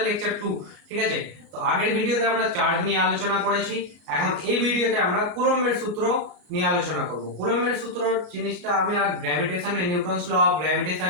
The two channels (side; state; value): left; late; 33 ms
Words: লেকচার 2। ঠিক আছে, তো আগের ভিডিওতে আমরা চার্জ নিয়ে আলোচনা করেছি, এখন এই ভিডিওতে আমরা কুলম্বের সূত্র নিয়ে আলোচনা করব। কুলম্বের সূত্র জিনিসটা আমি আর গ্র্যাভিটেশনে নিউটনস ল অফ